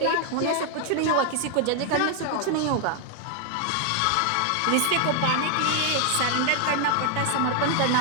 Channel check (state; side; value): different; both; correlation 0.00